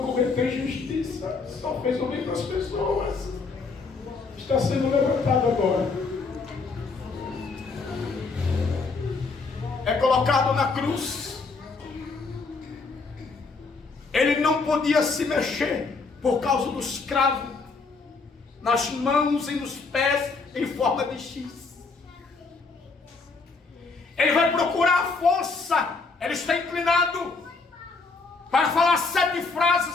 injustiça. Só fez o bem para as pessoas. Está sendo levantado agora. É colocado na cruz. Ele não podia se mexer por causa dos cravos nas mãos e nos pés em forma de X. Ele vai procurar a força. Ele está inclinado para falar 7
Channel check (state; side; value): quieter; right; 4.2 dB